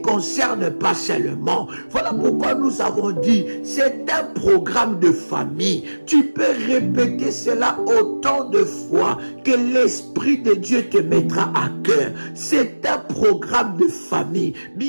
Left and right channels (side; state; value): both; inverted; correlation -1.00